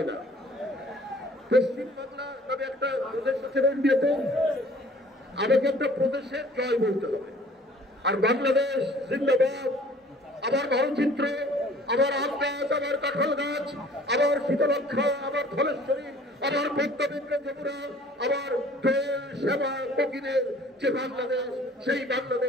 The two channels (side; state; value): both; normal; correlation 0.52